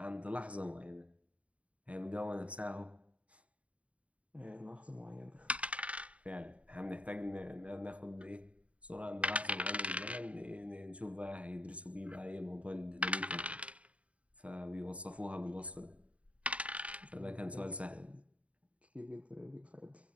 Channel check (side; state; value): left; late; 0.065 ms